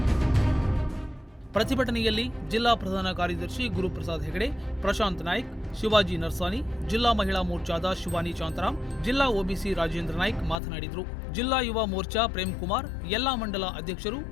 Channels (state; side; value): drops out; right; at 10.6 s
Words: ಪ್ರತಿಭಟನೆಯಲ್ಲಿ ಜಿಲ್ಲಾ ಪ್ರಧಾನ ಕಾರ್ಯದರ್ಶಿ ಗುರುಪ್ರಸಾದ್ ಹೆಗಡೆ, ಪ್ರಶಾಂತ್ ನಾಯ್ಕ್, ಶಿವಾಜಿ ನರ್ಸಾನಿ, ಜಿಲ್ಲಾ ಮಹಿಳಾ ಮೋರ್ಚಾದ ಶಿವಾನಿ ಶಾಂತರಾಮ್, ಜಿಲ್ಲಾ ಒಬಿಸಿ ರಾಜೇಂದ್ರ ನಾಯ್ಕ್ ಮಾತನಾಡಿದರು. ಜಿಲ್ಲಾ ಯುವ ಮೋರ್ಚಾ ಪ್ರೇಮ್ ಕುಮಾರ್, ಎಲ್ಲಾ ಮಂಡಲ ಅಧ್ಯಕ್ಷರು,